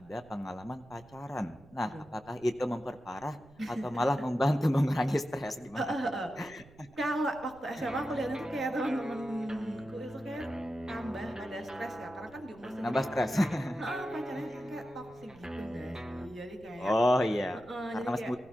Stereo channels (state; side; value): noise; right; rumble, 24 dB below the sound